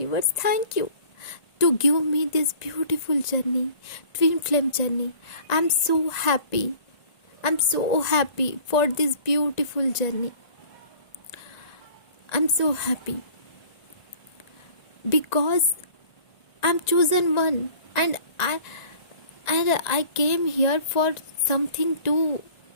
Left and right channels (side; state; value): right; late; 1.9 ms